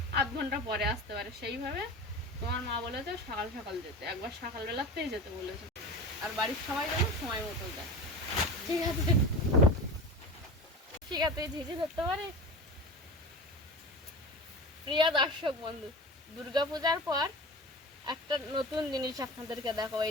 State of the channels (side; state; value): both; normal; correlation 0.32